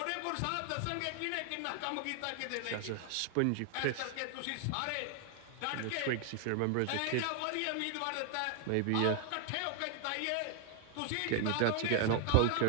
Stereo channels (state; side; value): different; both; correlation 0.00